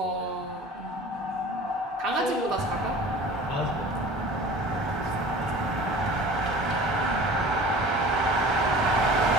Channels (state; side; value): normal; both; correlation 0.42